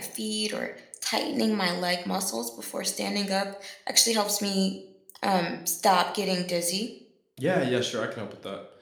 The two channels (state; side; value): identical; both; correlation 1.00